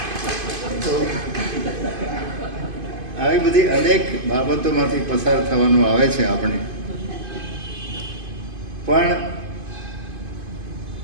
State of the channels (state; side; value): late; left; 2.5 ms